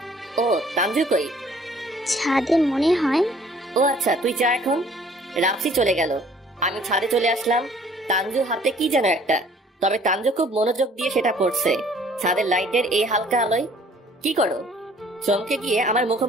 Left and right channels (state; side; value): normal; both; correlation 0.56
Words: ও তানজু কই? ছাদে মনে হয়। ও আচ্ছা, তুই যা এখন। রাপসি চলে গেল। আমি ছাদে চলে আসলাম। তানজু হাতে কি যেন একটা, তবে তানজু খুব মনোযোগ দিয়ে সেটা পড়ছে। ছাদের লাইটের এই হালকা আলোয়। কি করো? চমকে গিয়ে আমার